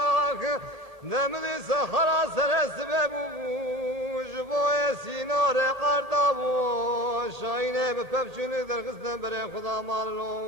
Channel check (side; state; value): left; late; 1.8 ms